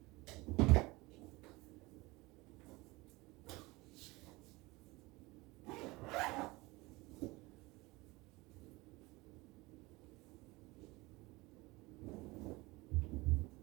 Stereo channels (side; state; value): left; quieter; 22.4 dB